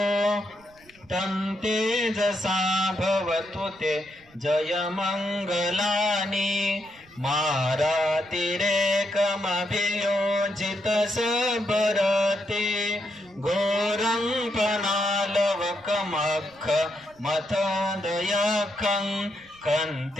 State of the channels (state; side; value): noise; right; rumble, 29 dB below the sound